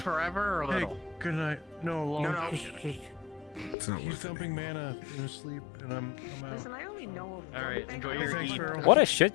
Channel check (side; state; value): right; drops out; at 3.8 s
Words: or Hey, little? good night. No, long. No. It's not He's worth it. dumping mana in his sleep, and I'm out. Listen, I only know of. Alright, enjoy your Thanks, eat. Farrell. What a